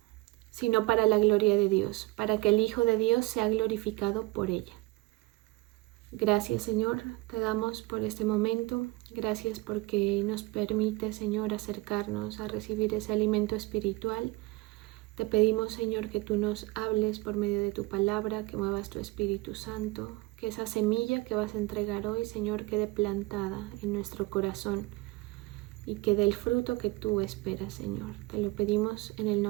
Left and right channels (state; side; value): quieter; left; 20.6 dB